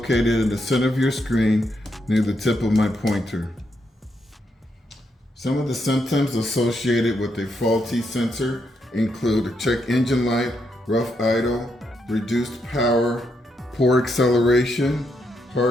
in the center of your screen near the tip of my pointer. Some of the symptoms associated with a faulty sensor include a check engine light, rough idle, reduced power, poor acceleration,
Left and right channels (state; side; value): normal; both; correlation 0.80